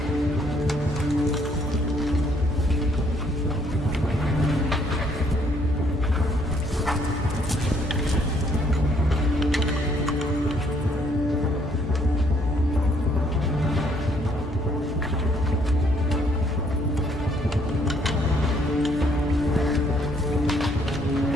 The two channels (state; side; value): normal; both; correlation 0.67